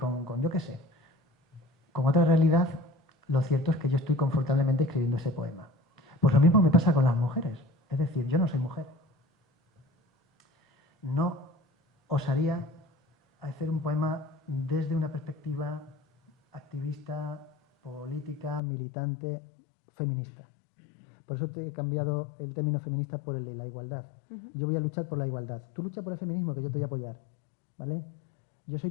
yo qué sé, con otra realidad, lo cierto es que yo estoy confortablemente escribiendo ese poema. Pues lo mismo me pasa con las mujeres. Es decir, yo no soy mujer. No osaría hacer un poema desde una perspectiva activista, política, militante, feminista. Por eso te he cambiado el término feminista por el de la igualdad. Yo voy a luchar por la igualdad. Tú lucha por el feminismo, que yo te voy a apoyar. ¿Vale? Yo soy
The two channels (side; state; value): right; drops out; at 18.6 s